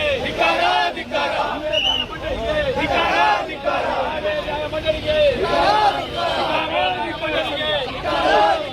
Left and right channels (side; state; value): both; identical; correlation 1.00